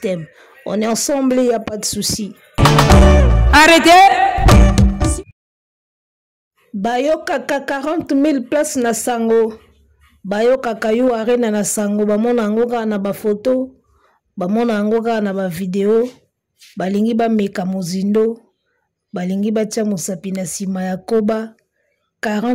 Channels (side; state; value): both; identical; correlation 1.00